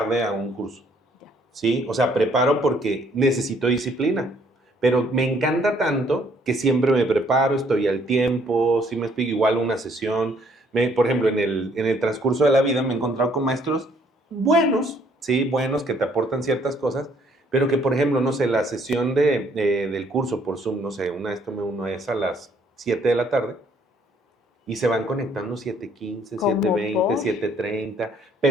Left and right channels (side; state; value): both; normal; correlation 0.64